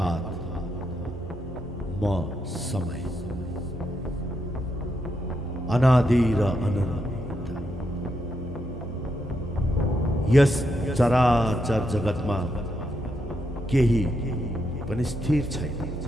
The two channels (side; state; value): both; normal; correlation 0.81